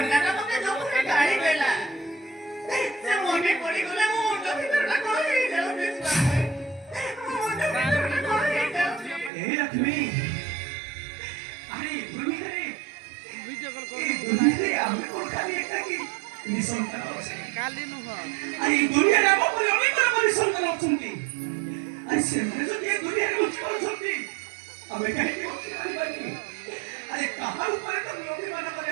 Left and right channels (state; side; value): drops out; left; at 9.3 s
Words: তোকে জোরে গাড়ি দেলা ସେ ମନେ ପଡ଼ିଗଲେ ମୋ ମୁଣ୍ଡ ଭିତରଟା କଣ ହେଇଯାଉଛି ଏ ଲକ୍ଷ୍ମୀ ଆରେ ଦୁନିଆରେ ଆମେ କଣ ଖାଲି ଏକାକି ନିଃସନ୍ତାନ ଅଛି କାଲି ନୁହଁ ଆରେ ଏ ଦୁନିଆରେ ଆମ ପରି ଅନେକ ଲୋକ ନିଃସନ୍ତାନ ଅଛନ୍ତି ଆରେ ସେମାନେ ଯଦି ଏ ଦୁନିଆରେ ବଞ୍ଚି ପାରୁଛନ୍ତି ଆମେ କାହିଁକି ବଞ୍ଚି ପାରିବାନି ଆରେ କାହା ଉପରେ ତ ଲୋକମାନଙ୍କର